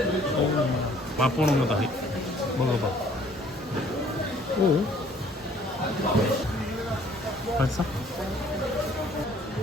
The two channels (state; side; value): normal; both; correlation 0.58